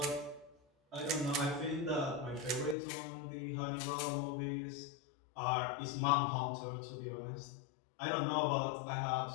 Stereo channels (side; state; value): right; drops out; at 2.8 s